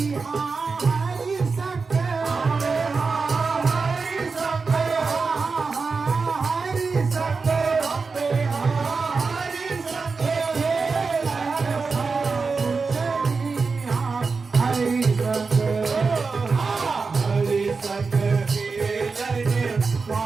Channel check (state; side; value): quieter; left; 4.6 dB